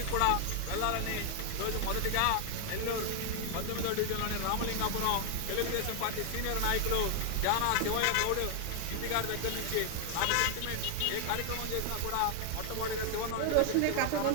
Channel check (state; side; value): different; both; correlation 0.00